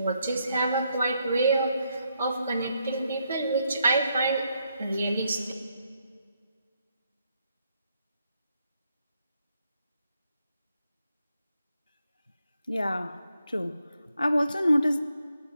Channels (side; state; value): both; inverted; correlation -0.78